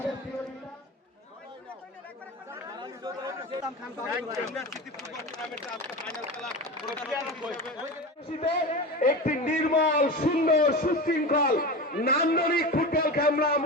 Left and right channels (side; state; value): both; normal; correlation 0.26